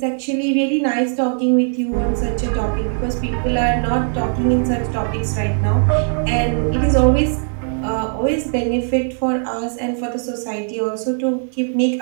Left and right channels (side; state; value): left; silent; 66 dB below the other